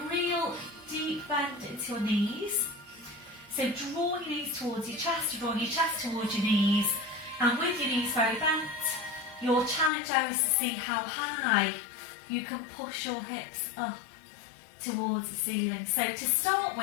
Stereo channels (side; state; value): right; drops out; at 9.9 s